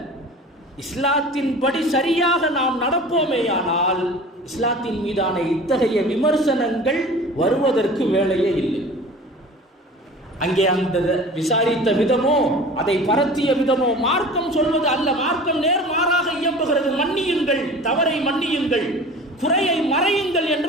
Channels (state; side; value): normal; both; correlation 0.40